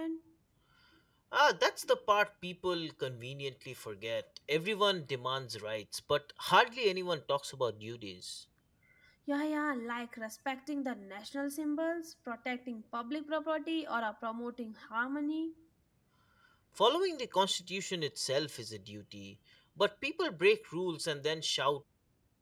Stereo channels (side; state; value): both; identical; correlation 1.00